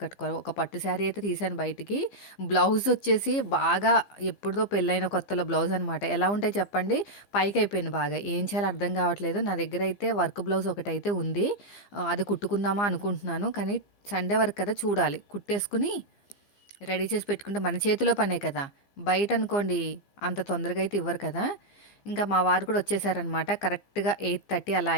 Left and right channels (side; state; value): right; late; 15 ms